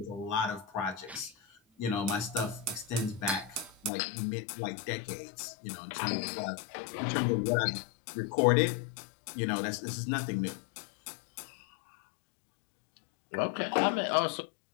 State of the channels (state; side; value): drops out; right; at 3.9 s